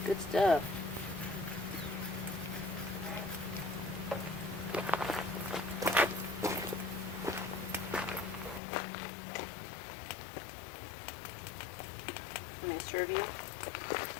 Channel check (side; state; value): right; drops out; at 8.6 s